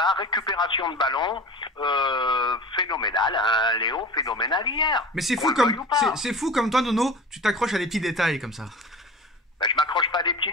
récupération de ballon, phénoménal, hein, Léo, phénoménal hier. Mais c'est fou comme, c'est fou comme toi, Nono, tu t'accroches à des petits détails comme ça. Ben, je m'accroche pas à des petits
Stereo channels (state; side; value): normal; both; correlation 0.36